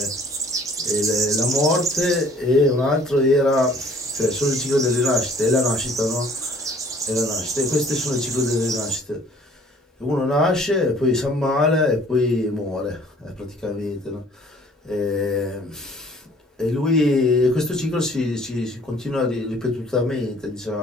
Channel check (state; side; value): normal; both; correlation 0.55